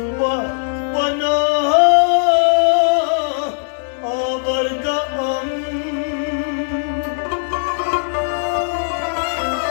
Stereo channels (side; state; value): right; silent; digital silence